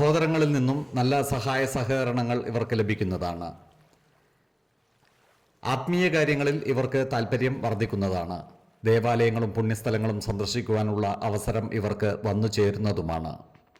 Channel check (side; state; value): both; identical; correlation 1.00